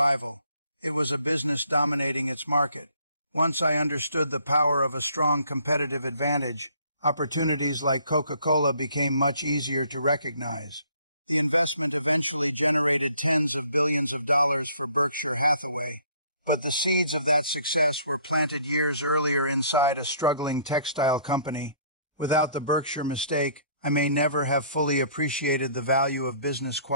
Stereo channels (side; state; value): both; inverted; correlation -0.60